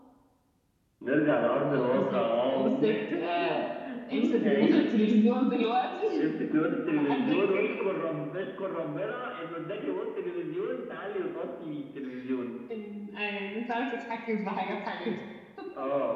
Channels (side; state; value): both; identical; correlation 1.00